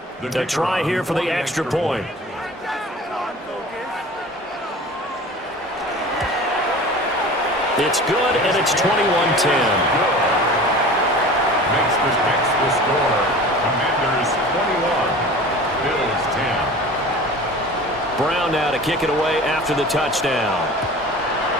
To try here for the extra point. It's good, and it's 21-10. Makes the score. Commanders 21, Bills 10. Brown now to kick it away after the touchdown.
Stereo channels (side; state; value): both; normal; correlation 0.40